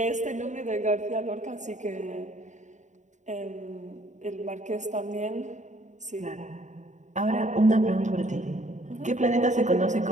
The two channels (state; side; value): late; left; 0.35 ms